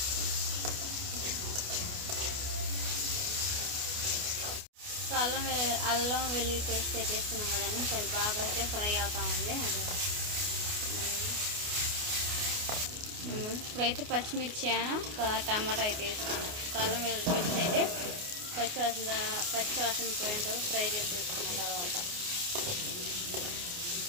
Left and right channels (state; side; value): late; left; 29 ms